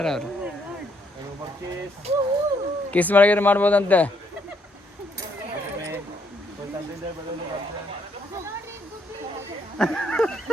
ಅವರು ಕಿಸ್ ಮಾಡಿದ್ರೆ ಮಾಡ್ಬೋದಂತೆ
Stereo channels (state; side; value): normal; both; correlation 0.72